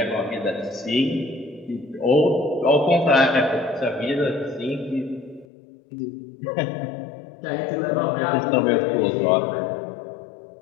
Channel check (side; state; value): right; drops out; at 5.5 s